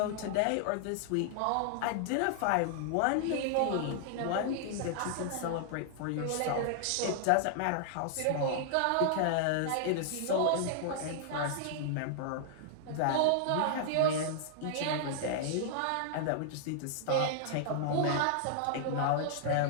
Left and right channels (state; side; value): different; both; correlation -0.01